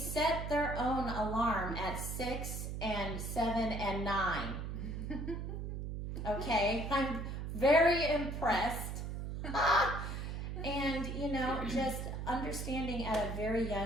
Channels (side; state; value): right; noise; hum, 5 dB below the sound